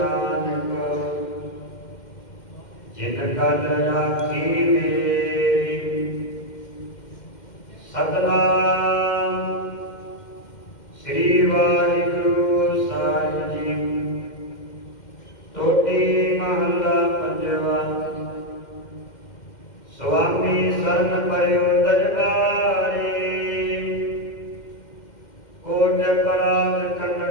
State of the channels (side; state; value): right; late; 2.1 ms